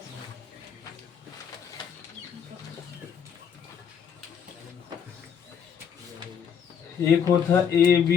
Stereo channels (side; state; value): right; quieter; 7.6 dB